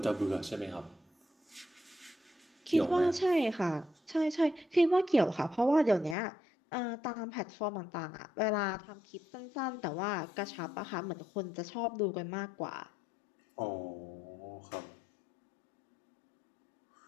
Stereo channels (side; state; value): right; drops out; at 6.2 s